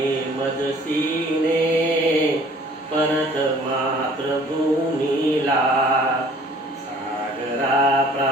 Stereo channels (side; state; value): both; normal; correlation 0.53